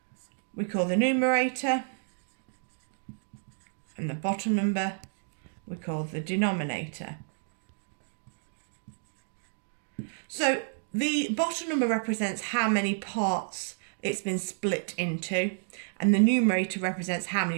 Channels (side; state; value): left; silent; digital silence